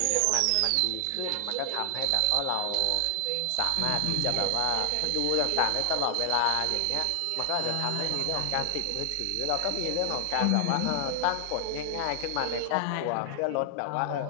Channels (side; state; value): both; different; correlation 0.00